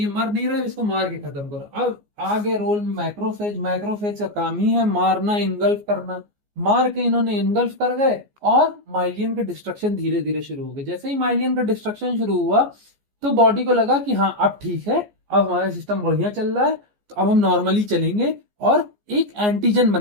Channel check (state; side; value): late; left; 14 ms